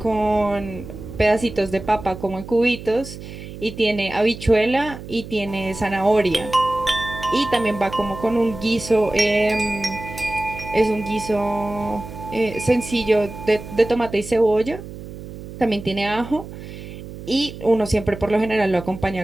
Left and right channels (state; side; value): noise; right; hum, 12 dB below the sound